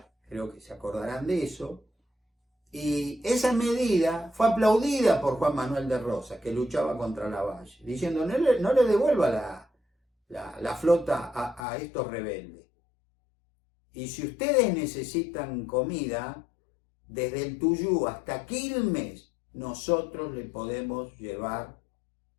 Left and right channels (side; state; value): right; drops out; at 11.6 s